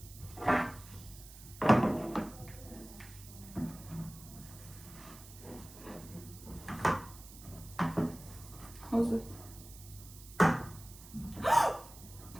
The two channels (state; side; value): noise; right; hiss, 17 dB below the sound